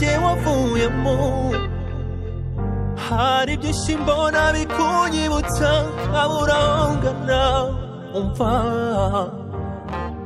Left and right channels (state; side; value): identical; both; correlation 1.00